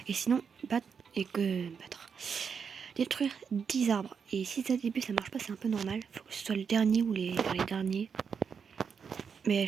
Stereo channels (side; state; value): left; quieter; 6.4 dB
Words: Et sinon, battre. Détruire 10 arbres. Et si ça début ça marche pas, c'est un peu normal. Faut que ce soit le dernier ou les derniers. Mais